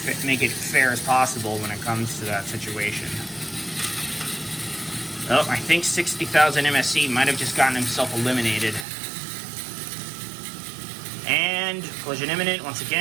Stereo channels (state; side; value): drops out; left; at 8.8 s